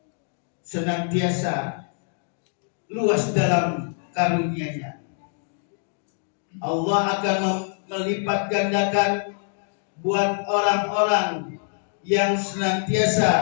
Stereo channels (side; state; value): right; silent; 61 dB below the other